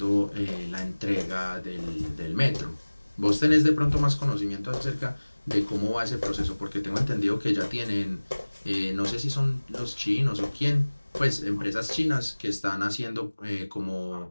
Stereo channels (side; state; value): both; inverted; correlation -1.00